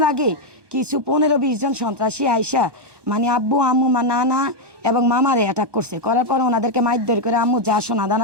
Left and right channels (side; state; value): left; late; 1.2 ms